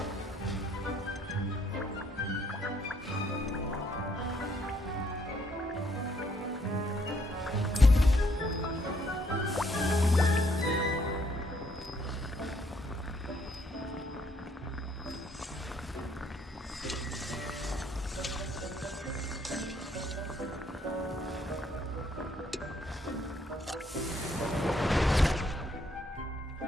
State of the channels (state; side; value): normal; both; correlation 0.69